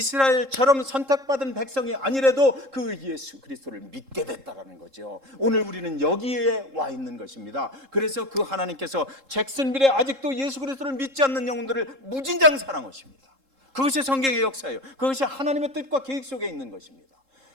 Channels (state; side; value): late; left; 3.7 ms